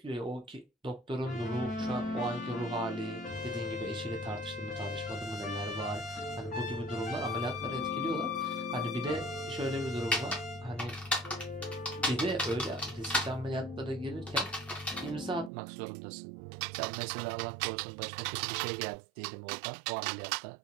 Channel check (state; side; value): drops out; left; at 15.5 s